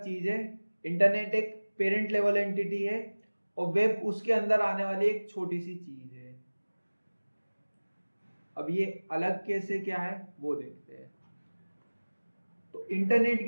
चीज है। इंटरनेट एक पेरेंट लेवल एंटिटी है और वेब उसके अंदर आने वाली एक छोटी सी चीज है। अब ये अलग कैसे क्या है वो देखते हैं। तो इंटरनेट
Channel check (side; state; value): both; inverted; correlation -1.00